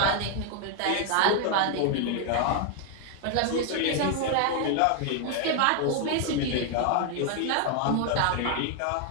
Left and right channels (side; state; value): both; different; correlation 0.01